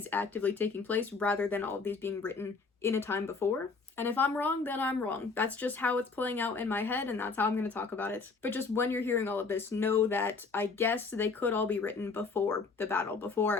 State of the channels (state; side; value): quieter; right; 4.4 dB